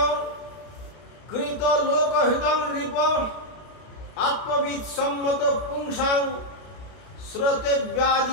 কৃত লোকহিতং নৃপ আত্মবিদ সম্মত পুংসাং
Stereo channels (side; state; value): right; late; 32 ms